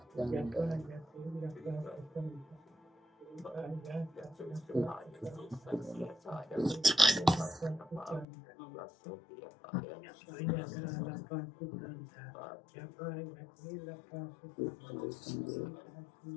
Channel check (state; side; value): drops out; right; at 8.2 s